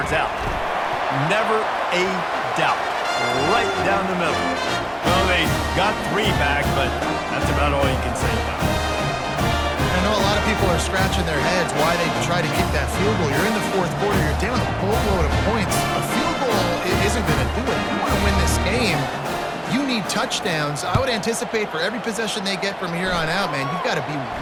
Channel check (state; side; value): identical; both; correlation 1.00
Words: out. Never a doubt. Right down the middle. Well, they got three back, but that's about all you can say about it. I know a lot of people are scratching their heads why they try to kick that field goal. You're in the fourth quarter. You're down a boatload of points. A field goal isn't going to do it. You want to win this game. You need touchdowns. I would anticipate for every possession they get from here on out, man, you've got to